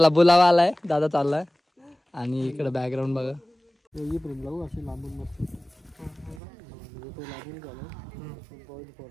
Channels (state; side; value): drops out; left; at 6.4 s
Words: बोलावा आलाय, दादा चाललाय. आणि इकडे बॅकग्राऊंड बघा. अशी लांबून मस्त तो लागून